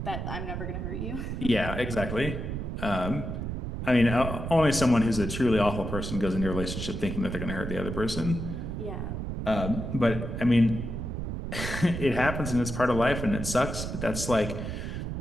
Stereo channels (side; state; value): right; noise; rumble, 5 dB below the sound